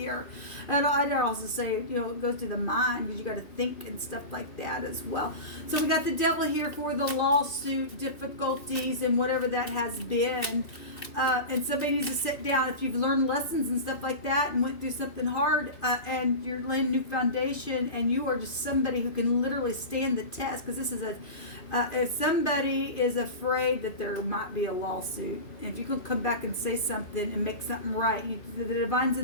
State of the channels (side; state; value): right; late; 2.5 ms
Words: And I'd also say, you know, it goes to the mind because you got to think and stuff like that as well. So we got the devil here for the lawsuit difficulties and whatever that has been. And somebody needs to sit down. If you've learned lessons and stuff like that and went through something hard and you're laying a new foundation and you are just somebody who can literally stand the test, because this is a if somebody is afraid that there might be a lawsuit, if you can come back and say something and make something right, the divine's